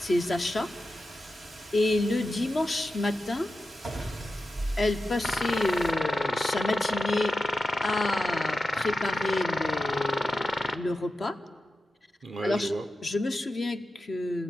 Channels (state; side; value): normal; both; correlation 0.91